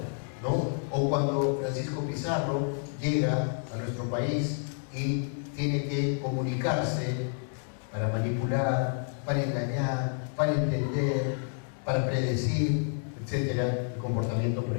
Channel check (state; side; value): silent; right; 58 dB below the other